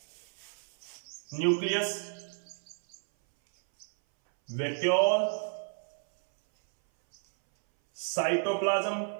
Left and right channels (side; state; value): left; silent; 57 dB below the other